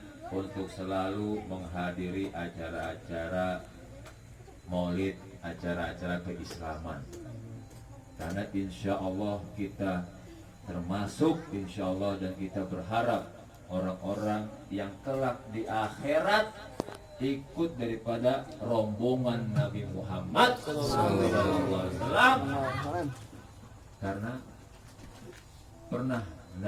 untuk selalu menghadiri acara-acara maulid, acara-acara keislaman. Karena insya Allah kita termasuk insya Allah dan kita berharap orang-orang yang kelak di akhirat ikut daripada rombongan Nabi Muhammad SAW. Karena pernah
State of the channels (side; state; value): both; identical; correlation 1.00